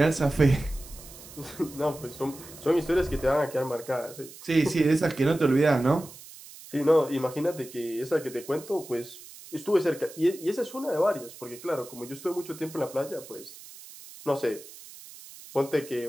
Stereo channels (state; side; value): noise; right; hiss, 17 dB below the sound